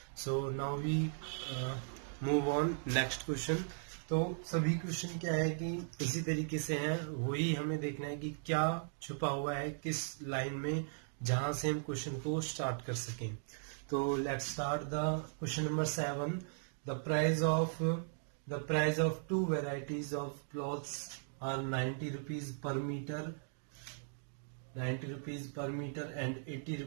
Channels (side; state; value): left; silent; digital silence